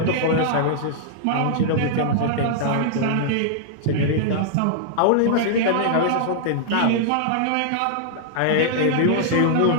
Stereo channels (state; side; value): different; both; correlation -0.01